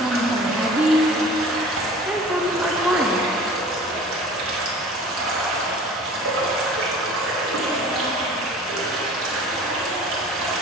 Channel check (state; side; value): normal; both; correlation 0.43